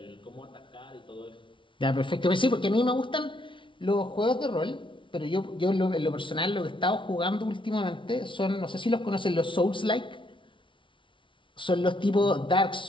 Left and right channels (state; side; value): late; right; 0.25 ms